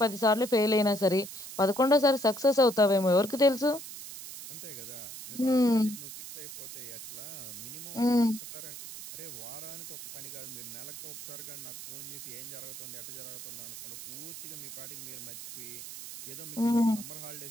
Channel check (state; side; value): noise; right; hiss, 11 dB below the sound